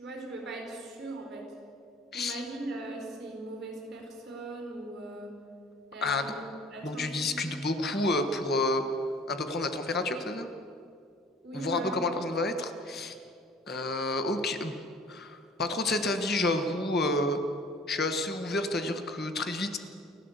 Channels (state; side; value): normal; both; correlation 0.50